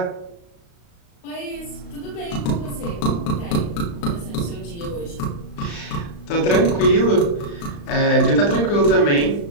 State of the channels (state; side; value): late; right; 35 ms